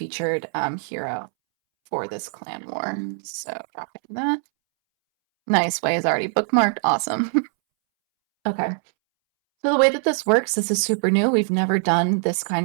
hero for this clan war. So dropping that. Nice. Way is already bookmarked. Awesome. Okay. So the way that this works, this is super new. We've never done this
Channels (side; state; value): left; silent; 64 dB below the other